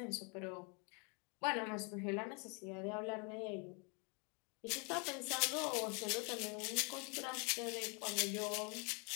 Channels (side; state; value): right; quieter; 34.4 dB